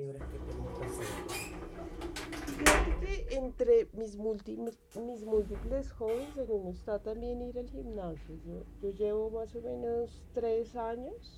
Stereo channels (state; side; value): identical; both; correlation 1.00